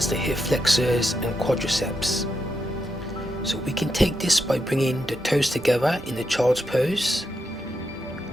the hip flexors and quadriceps. So we can take this by bringing the toes together in the child's pose,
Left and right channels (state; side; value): normal; both; correlation 0.83